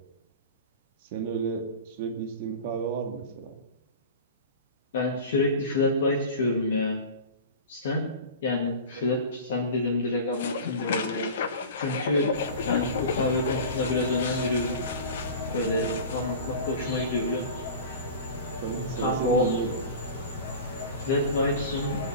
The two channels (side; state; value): both; inverted; correlation -0.34